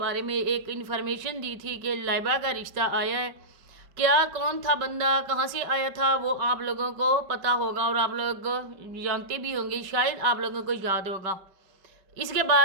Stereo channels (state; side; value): late; left; 5.2 ms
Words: में एक इन्फॉर्मेशन दी थी कि लाइबा का रिश्ता आया है। क्या कौन था बंदा, कहाँ से आया था, वो आप लोगों को पता होगा और आप लोग जानते भी होंगे, शायद आप लोगों को याद होगा। इसके